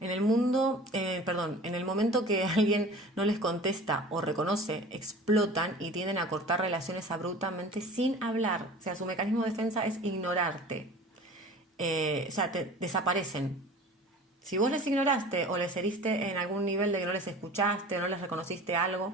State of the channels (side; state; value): both; normal; correlation 0.41